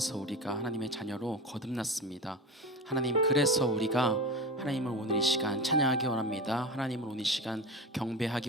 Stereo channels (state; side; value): normal; both; correlation 0.26